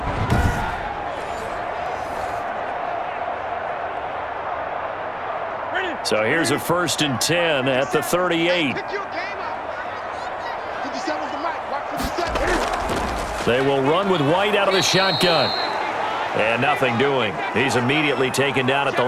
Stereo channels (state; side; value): identical; both; correlation 1.00